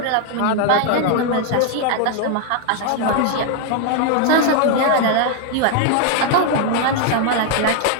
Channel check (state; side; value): different; both; correlation 0.00